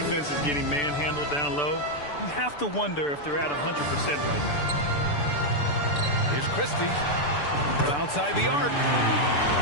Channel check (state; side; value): late; right; 6.9 ms